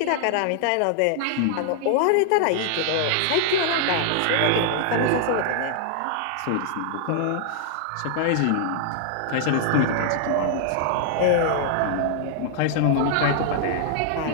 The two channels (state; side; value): different; both; correlation -0.01